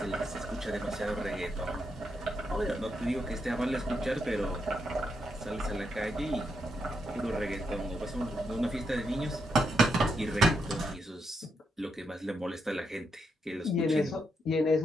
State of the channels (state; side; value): normal; both; correlation 0.81